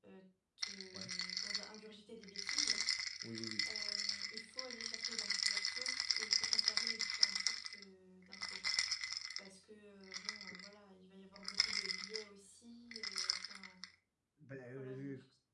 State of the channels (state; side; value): identical; both; correlation 1.00